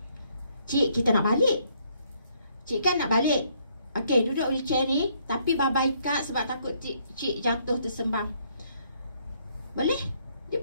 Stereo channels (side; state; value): both; inverted; correlation -0.69